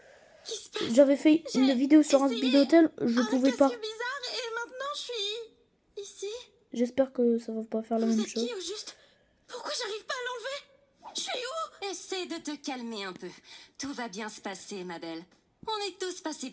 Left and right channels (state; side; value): identical; both; correlation 1.00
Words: j'avais fait une vidéo sur un speed hotel, je pouvais pas. C'est bizarre et maintenant je suis ici. J'espère que ça va pas faire la Vous même êtes chose. qui au juste? Pourquoi j'arrive pas à l'enlever? Je suis où? Essaie de te calmer un peu. Tout va bien se passer, ma belle. On est tous passés